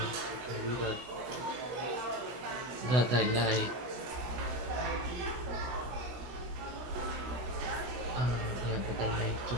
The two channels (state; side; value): late; left; 16 ms